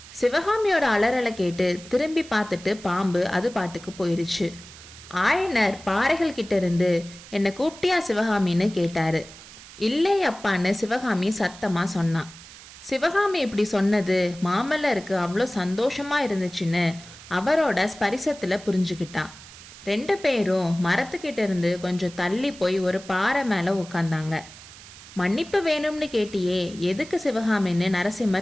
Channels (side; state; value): right; noise; hiss, 18 dB below the sound